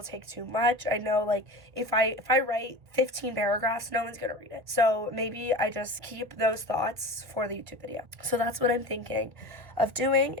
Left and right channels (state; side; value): late; left; 1.8 ms